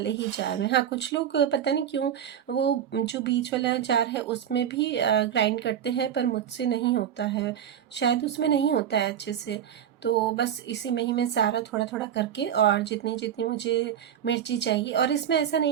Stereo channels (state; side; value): quieter; left; 9.5 dB